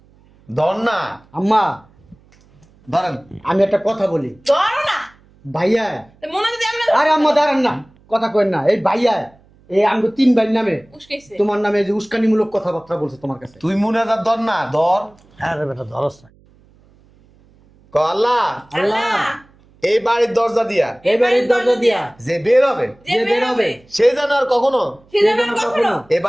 ধর না আম্মা ধরেন। আমি একটা কথা বলি, ধরো না। ভাইয়া। মনে যদি আমরা আরে আম্মা দাঁড়ান না, কথা কইন না। এই ভাইয়া এই আমগো 3 ভাই নামে উস্কাইছে। তোমার নামে যে উস্কানিমূলক কথাবার্তা বলছে তোমার কাছে। তুই মুনাজাত ধর না, ধর। আরে বেটা ধরস না। ক আল্লাহ আল্লাহ এই বাড়ির দরজা দিয়া এই বাড়ির দরজা দিয়া যে বের হবে যে বের হবে সে যেন আর কখনো সে যেন কখনো এই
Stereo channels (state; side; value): noise; right; hum, 30 dB below the sound